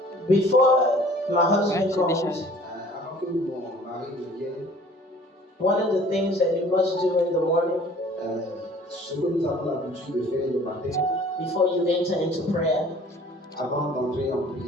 Before my husband comes, one of the things that you must do in the morning, before you enter into prayer,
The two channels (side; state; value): both; normal; correlation 0.51